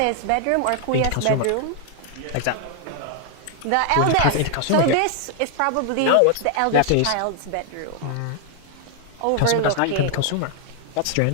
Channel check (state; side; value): different; both; correlation 0.00